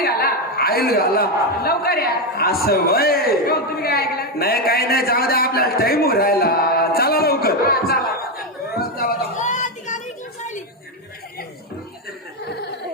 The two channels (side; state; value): both; normal; correlation 0.08